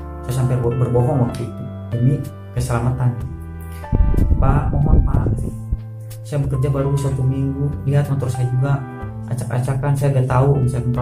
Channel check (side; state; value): both; identical; correlation 1.00